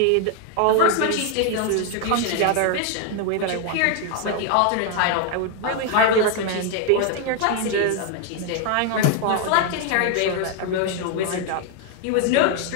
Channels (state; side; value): different; both; correlation 0.00